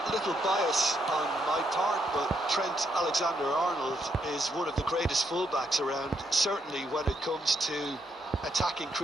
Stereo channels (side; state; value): both; normal; correlation 0.77